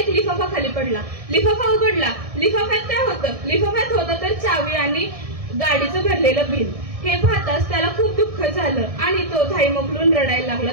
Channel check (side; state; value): left; late; 1.6 ms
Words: लिफाफा खाली पडला. लिफाफा उघडला. लिफाफ्यात होतं तर चावी आणि गाडीचं भरलेलं बिल. हे पाहताच त्याला खूप दुःख झालं आणि तो धाई मोकलून रडायला